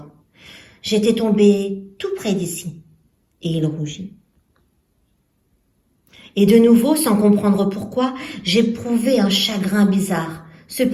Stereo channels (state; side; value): identical; both; correlation 1.00